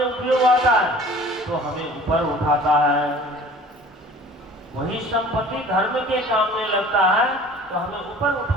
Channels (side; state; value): both; normal; correlation 0.47